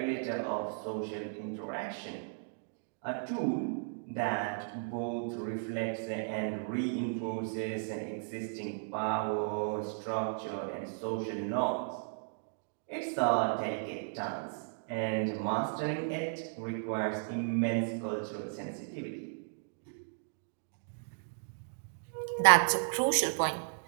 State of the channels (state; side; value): silent; left; digital silence